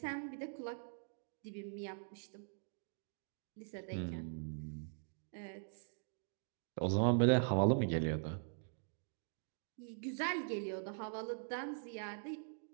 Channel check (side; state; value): left; silent; digital silence